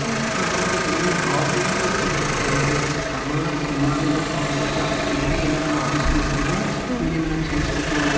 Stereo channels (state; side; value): identical; both; correlation 1.00